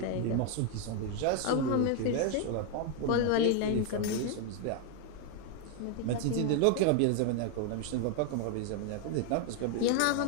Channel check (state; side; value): different; both; correlation 0.01